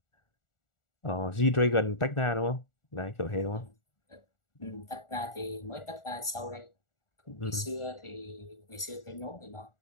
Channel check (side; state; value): right; late; 1.4 ms